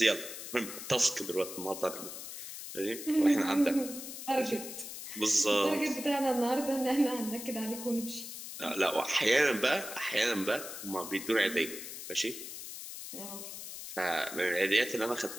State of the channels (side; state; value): left; noise; hiss, 9 dB below the sound